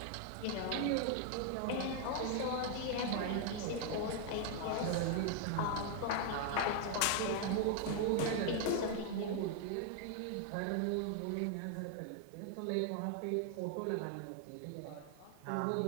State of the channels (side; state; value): both; different; correlation 0.00